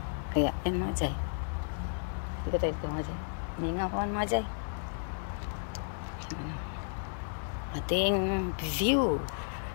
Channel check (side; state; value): right; silent; digital silence